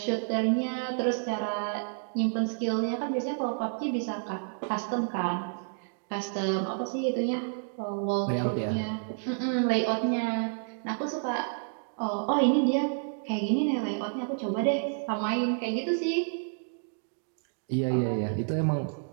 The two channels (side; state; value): left; silent; digital silence